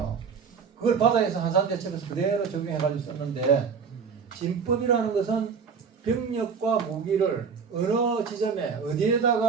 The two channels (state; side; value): quieter; left; 6.0 dB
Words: 그걸 바다에서 한산대첩에서 그대로 적용해가지고 썼는데 진법이라는 것은 병력과 무기를 어느 지점에